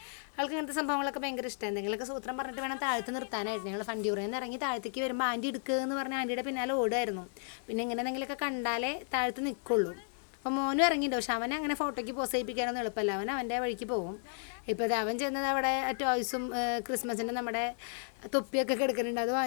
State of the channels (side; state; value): right; silent; digital silence